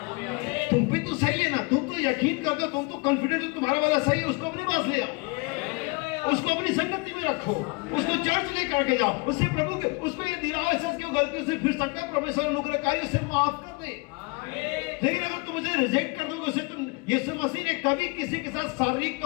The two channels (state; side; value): quieter; right; 28.8 dB